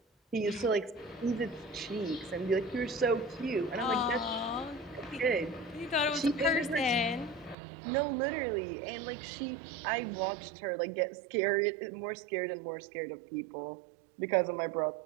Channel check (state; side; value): drops out; left; at 7.6 s